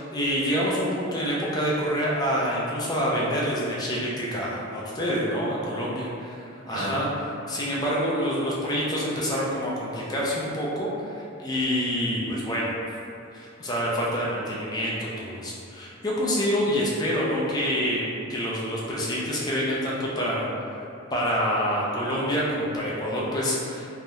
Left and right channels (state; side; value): normal; both; correlation 0.25